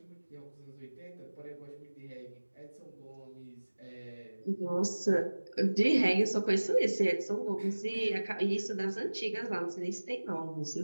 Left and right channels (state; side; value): inverted; both; correlation -1.00